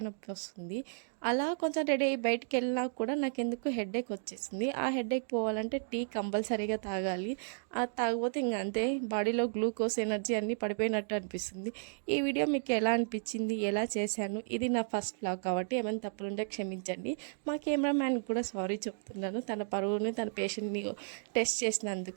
నొప్పి వస్తుంది. అలా కొంచెం రెడీ అయ్యి బయటికి వెళ్ళినా కూడా నాకెందుకు హెడేక్ వచ్చేసింది. ఆ హెడేక్ పోవాలంటే టీ కంపల్సరీగా తాగాలి. అది తాగకపోతే ఇంక అంతే, బాడీలో గ్లూకోజ్, ఎనర్జీ అన్నీ పడిపోయినట్టు అనిపిస్తుంది. ఈ వీడియో మీకు ఎలా అనిపించింది, ఎలా చేశాను, ఇది నా ఫస్ట్ వ్లాగ్ కాబట్టి ఏమైనా తప్పులుంటే క్షమించండి. మా కెమెరామ్యాన్కి కూడా సారీ చెప్తున్నాను. తన పరువుని, తన పేషెంట్ని టెస్ట్ చేసినందుకు.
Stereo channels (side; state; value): left; silent; digital silence